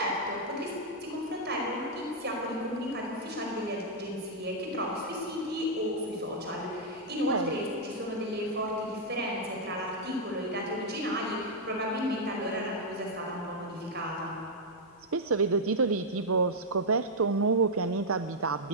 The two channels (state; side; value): normal; both; correlation -0.04